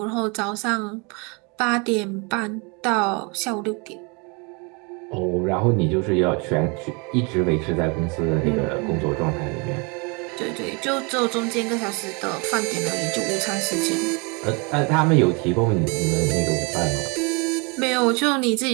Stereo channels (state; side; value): quieter; left; 31.1 dB